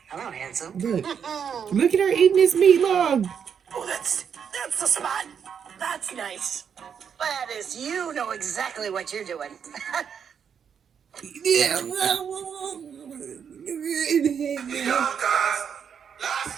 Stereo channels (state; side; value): quieter; left; 7.4 dB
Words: Hello, handsome. Look at her eating this meat log. Oh, that's the spot. That's nice. That is, you know exactly what you're doing. Yeah.